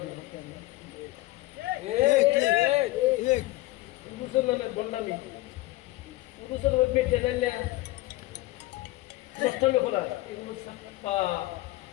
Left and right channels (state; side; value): quieter; right; 19.0 dB